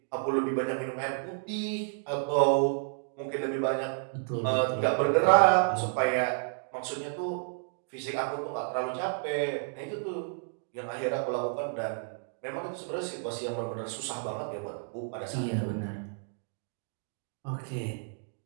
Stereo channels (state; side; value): silent; left; digital silence